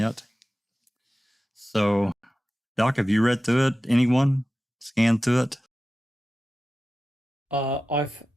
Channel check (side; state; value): both; normal; correlation 0.94